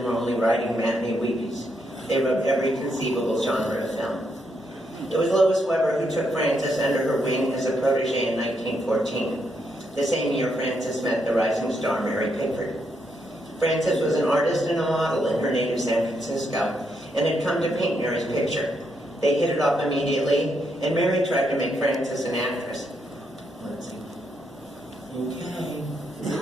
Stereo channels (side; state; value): both; normal; correlation 0.78